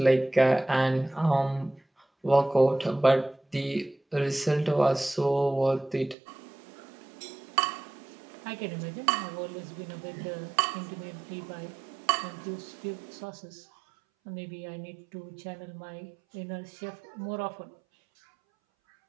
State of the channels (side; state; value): left; drops out; at 6.2 s